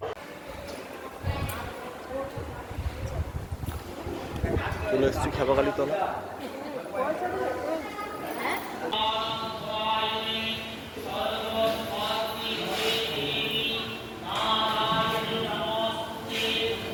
চলে এসেছি খেপাখালি তলা।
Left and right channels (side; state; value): both; identical; correlation 1.00